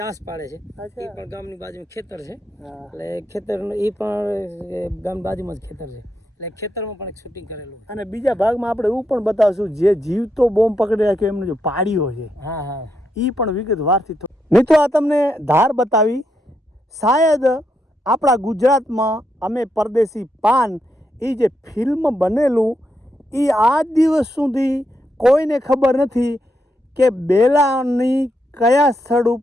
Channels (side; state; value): both; normal; correlation 0.81